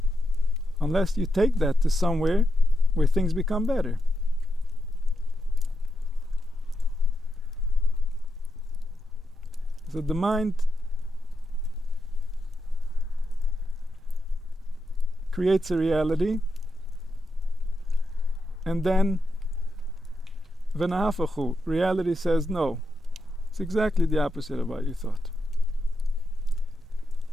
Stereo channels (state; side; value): normal; both; correlation 0.84